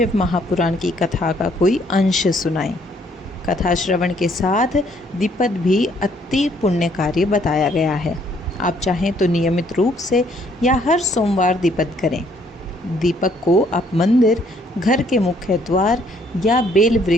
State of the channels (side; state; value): both; normal; correlation 0.66